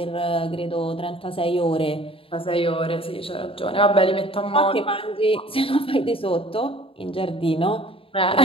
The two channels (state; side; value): late; right; 0.27 ms